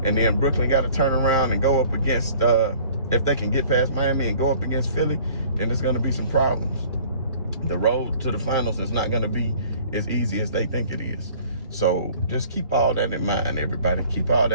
and then Brooklyn got to turn around and go up against, if they can get past Miami and go up against Philly, then there's going to be some problems. The road to the finals is not going to be as easy as they think it is. So just keep all that in mind, everybody. Keep all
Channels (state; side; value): inverted; both; correlation -0.52